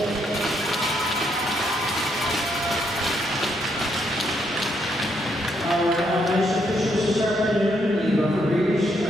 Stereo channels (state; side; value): normal; both; correlation 0.75